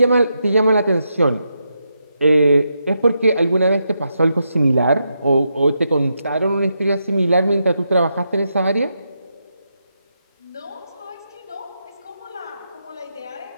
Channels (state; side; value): inverted; both; correlation -0.83